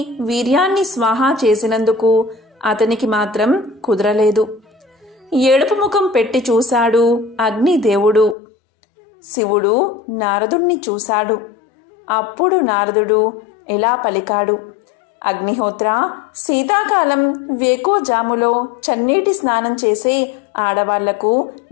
వీర్యాన్ని స్వాహా చేసినందుకు అతనికి మాత్రం కుదరలేదు. ఏడుపు ముఖం పెట్టి చూశాడు అగ్నిదేవుడు. శివుడు నారదుణ్ణి చూశాడు. అప్పుడు నారదుడు ఇలా పలికాడు: అగ్నిహోత్ర, శీతాకాలం వేకోజాములో చన్నీటి స్నానం చేసే ఆడవాళ్లకు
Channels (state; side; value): drops out; right; at 8.3 s